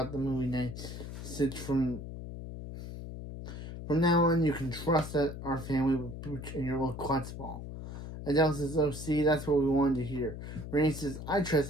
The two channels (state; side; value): noise; left; hum, 9 dB below the sound